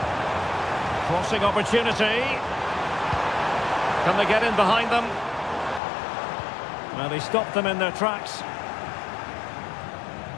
Crossing opportunity. Can they get in behind them? Well, they stopped them in their tracks.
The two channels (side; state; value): right; drops out; at 5.8 s